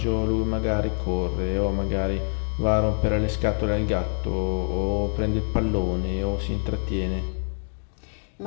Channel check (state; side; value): silent; right; digital silence